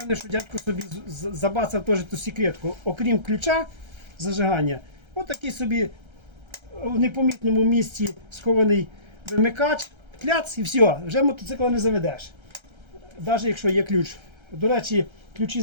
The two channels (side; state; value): left; late; 1.3 ms